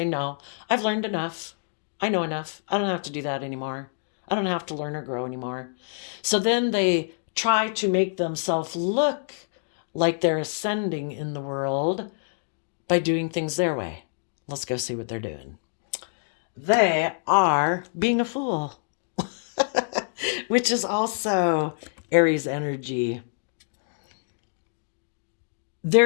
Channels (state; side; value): silent; right; digital silence